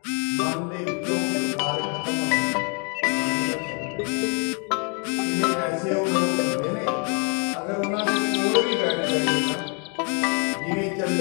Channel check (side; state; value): right; quieter; 36.1 dB